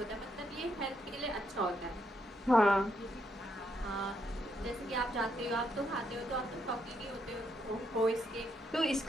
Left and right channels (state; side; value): normal; both; correlation 0.76